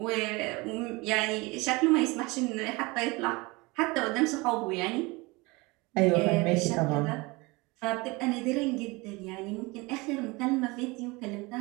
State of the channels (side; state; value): left; quieter; 24.6 dB